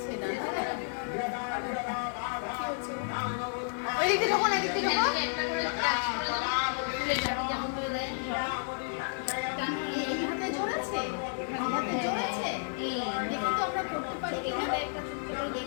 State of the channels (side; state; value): right; silent; digital silence